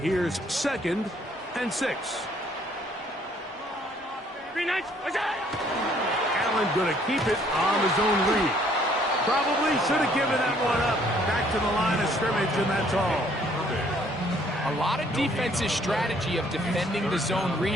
here's 2nd and 6. Allen going to keep it on his own read. Probably should have given that one up. Back to the line of scrimmage, and that's all. A lot of defense's strategy of defending the zone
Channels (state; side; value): normal; both; correlation 0.63